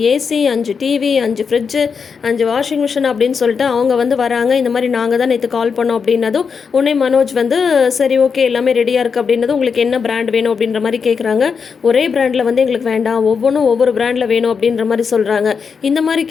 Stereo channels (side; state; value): right; quieter; 5.9 dB